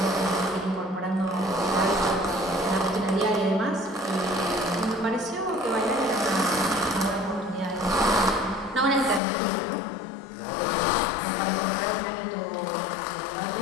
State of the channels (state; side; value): drops out; right; at 9.2 s